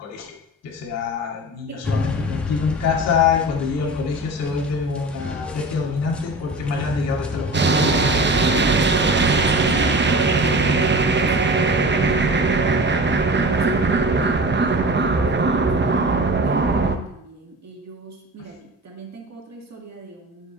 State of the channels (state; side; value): normal; both; correlation 0.34